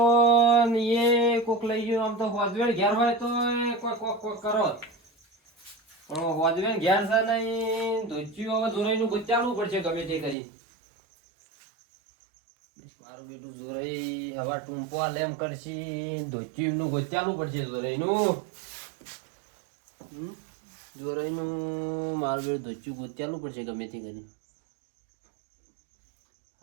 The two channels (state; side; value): drops out; left; at 10.4 s